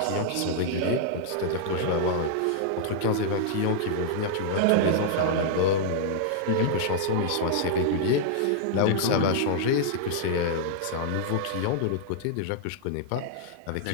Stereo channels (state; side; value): different; both; correlation -0.01